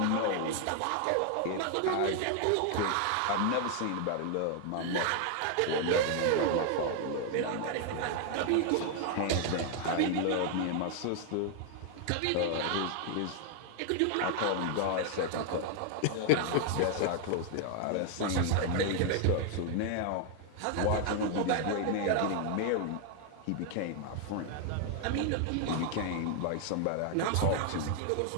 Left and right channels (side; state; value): both; different; correlation 0.00